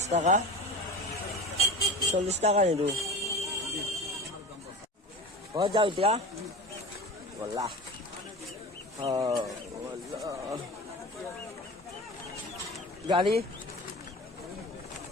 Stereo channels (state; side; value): normal; both; correlation 0.32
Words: টাকা 40 টাকা নিদু হৈ যাও এতিয়া বলা গাড়ী